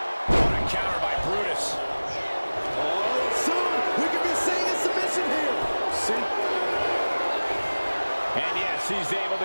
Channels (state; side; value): inverted; both; correlation -1.00